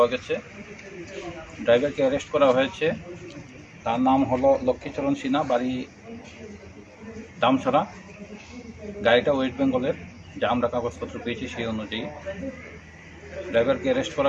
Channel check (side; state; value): both; identical; correlation 1.00